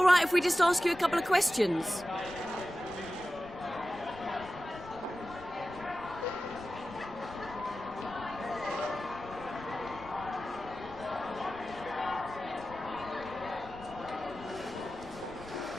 right if we just ask you a couple of questions?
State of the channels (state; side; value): noise; left; rumble, 21 dB below the sound